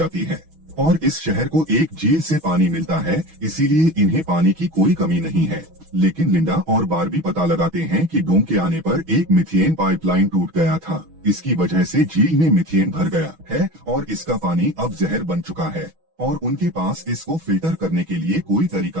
है और इस शहर को एक झील से पानी मिलता है, इसीलिए इन्हें पानी की कोई कमी नहीं है। लेकिन लिंडा और बारबी पता लगाते हैं कि डोम के आने पर एक मीथेन पाइपलाइन टूट गया था। इसकी वजह से झील में मीथेन भर गया है और इसका पानी अब जहर बन चुका है और उनके पास इसको फिल्टर करने के लिए कोई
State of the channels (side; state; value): left; late; 6.2 ms